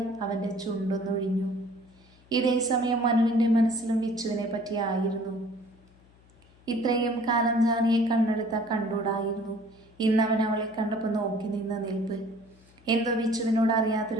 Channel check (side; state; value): left; noise; hum, 28 dB below the sound